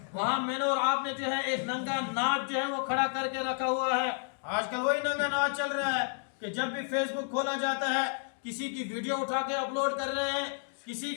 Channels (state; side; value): silent; right; 57 dB below the other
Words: وہاں میں نے اور آپ نے جو ہے ایک ننگا ناچ جو ہے وہ کھڑا کر کے رکھا ہوا ہے۔ آج کل وہی ننگا ناچ چل رہا ہے کہ جب بھی فیس بک کھولا جاتا ہے کسی کی ویڈیو اٹھا کے اپلوڈ کر رہے ہیں، کسی